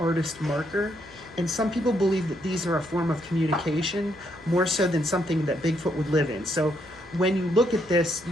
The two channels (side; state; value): right; noise; hum, 24 dB below the sound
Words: marker, and some people believe that these are a form of communication more so than something that Bigfoot would live in. So when you look at this,